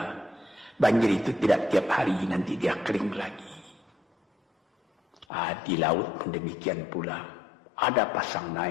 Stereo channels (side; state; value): right; drops out; at 5.2 s